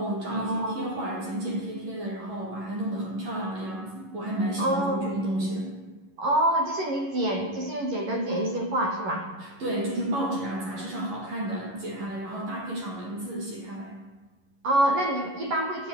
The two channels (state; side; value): late; left; 11 ms